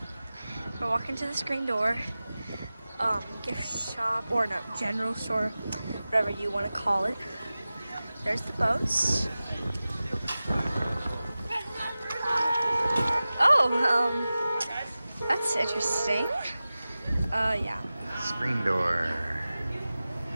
We're walking to the screen door. Gift shop, or no, general store, whatever you want to call it. There's the boats. Oh, that's interesting. Yeah. Screen door.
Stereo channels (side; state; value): both; inverted; correlation -0.96